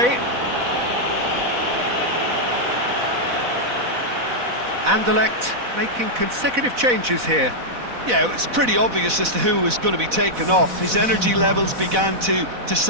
Anderlecht making consecutive changes here. Yeah, it's pretty obvious as to who was going to be taken off. His energy levels began to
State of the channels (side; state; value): left; late; 4.1 ms